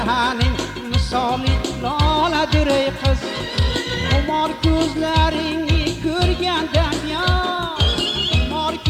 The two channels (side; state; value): both; identical; correlation 1.00